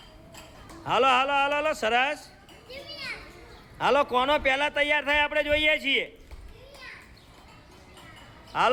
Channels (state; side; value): identical; both; correlation 1.00